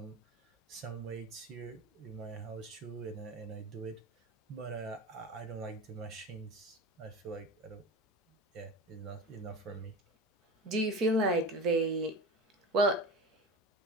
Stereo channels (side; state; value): both; normal; correlation 0.30